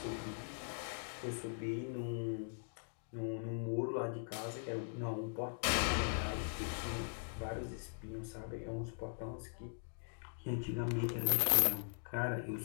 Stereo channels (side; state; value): right; silent; digital silence